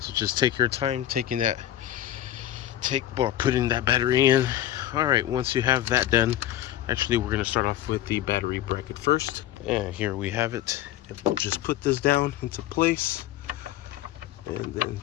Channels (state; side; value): quieter; right; 12.8 dB